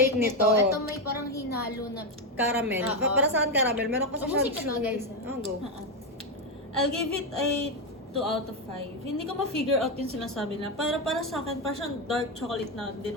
nito. Ito may parang hinalo na. Caramel. Oo. Para saan caramel? Meron kasi Oh, siya musika to, guys, Oh, go. I'll give it a 2 out of 5. Hindi ko ma-figure out yung sinasabi na. Para sa akin, parang siyang dark chocolate na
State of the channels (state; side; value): normal; both; correlation 0.08